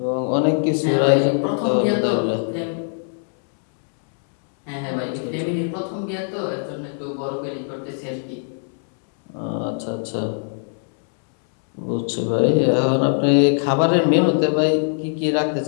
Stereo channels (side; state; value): right; silent; 65 dB below the other